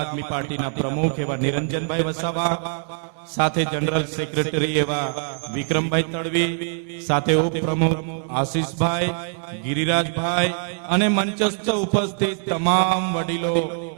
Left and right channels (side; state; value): left; silent; 56 dB below the other